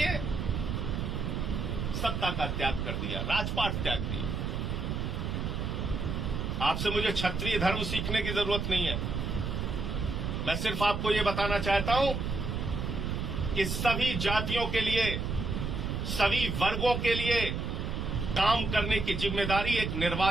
सत्ता का त्याग कर दिया, राजपाट त्याग दिया। आपसे मुझे क्षत्रिय धर्म सीखने की जरूरत नहीं है। मैं सिर्फ आपको यह बताना चाहता हूं कि सभी जातियों के लिए, सभी वर्गों के लिए काम करने की जिम्मेदारी एक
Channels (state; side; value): noise; right; rumble, 2 dB below the sound